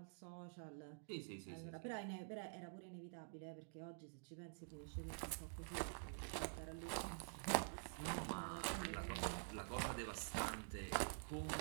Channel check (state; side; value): silent; left; digital silence